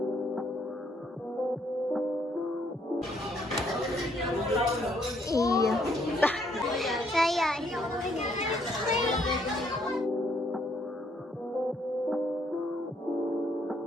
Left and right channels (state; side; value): normal; both; correlation 0.69